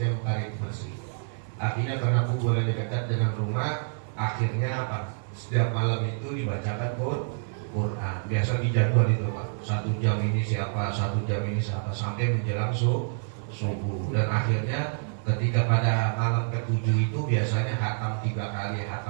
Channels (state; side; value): silent; left; 60 dB below the other